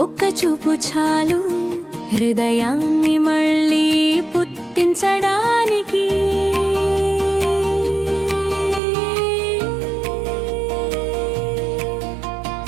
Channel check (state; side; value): drops out; left; at 8.8 s